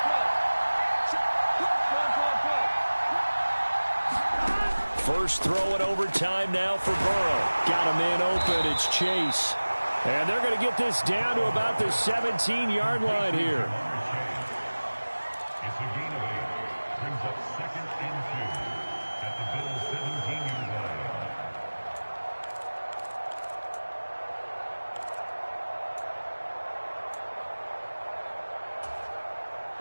First throw in overtime now for Burrow. Got a man open. It's Chase. And they're going to get this down to about the 17-yard line here. It's a gain of 8. Brings up second and 2 at the Bills' 17-yard line.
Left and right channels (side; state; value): both; inverted; correlation -1.00